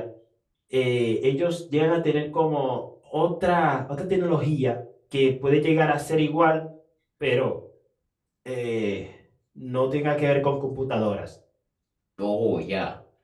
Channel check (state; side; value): identical; both; correlation 1.00